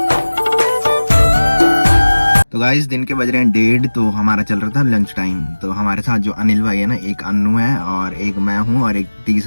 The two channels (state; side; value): inverted; both; correlation -1.00